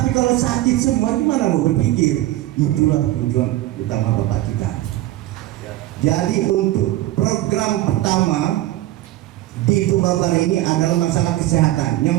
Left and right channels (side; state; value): left; quieter; 15.6 dB